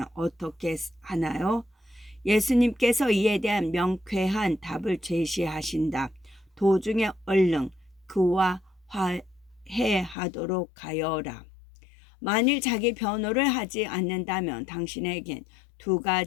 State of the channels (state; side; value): drops out; right; at 10.2 s